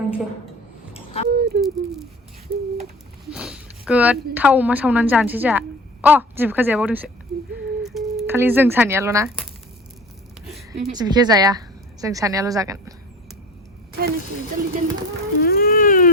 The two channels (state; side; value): normal; both; correlation 0.39